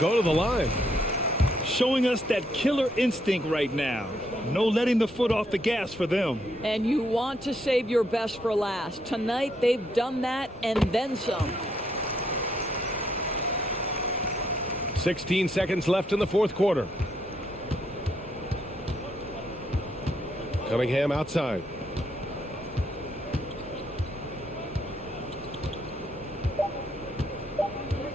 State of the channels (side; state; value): both; normal; correlation 0.74